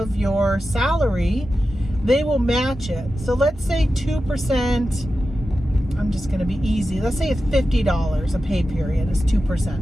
your salary, they will match it. So let's say 2%, I'm just going to be easy. Let's say it's $50 a pay period is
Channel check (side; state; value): both; normal; correlation 0.92